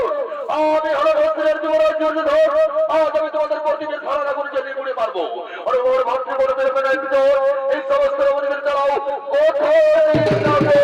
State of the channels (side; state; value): both; identical; correlation 1.00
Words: আমি হলো রত্নের যুবরাজ দুর্যোধন। আজ আমি তোমাদের প্রতিদিন ধরা আগুন জ্বালিয়ে পুড়ে মারবো। আরে ওর ভাবতে বড় বের করে এই সমস্ত অবধিবের চালাও